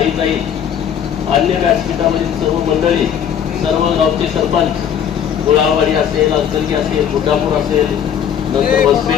अन्य व्यासपीठावरील सर्व मंडळी, सर्व गावचे सरपंच, गुळावाडी असेल, अक्कलगी असेल, बुटापूर असेल, नंतर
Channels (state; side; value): quieter; right; 8.7 dB